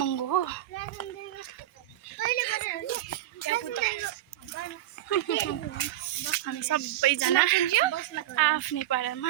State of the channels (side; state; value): left; quieter; 13.8 dB